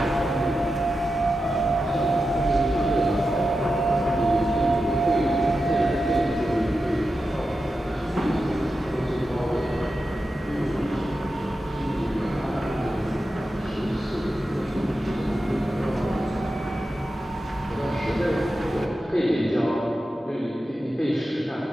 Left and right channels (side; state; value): both; normal; correlation 0.90